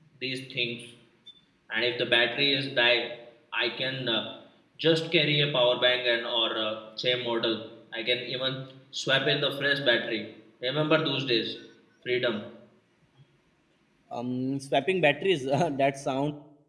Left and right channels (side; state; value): both; identical; correlation 1.00